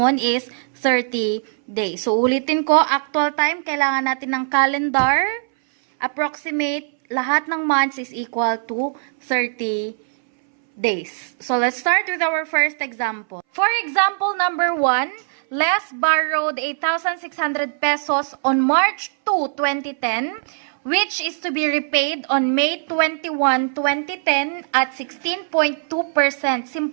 is 30 days. So, ulitin ko, actual time, kailangan natin ng calendar. Approximate, lahat ng months is equal to 30 days. So, let's start with our first example. For example number 1, Les borrowed 8,600 pesos on March 2, 2010, which is to be repaid on May 21, 2010 at 16.2%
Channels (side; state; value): left; silent; 63 dB below the other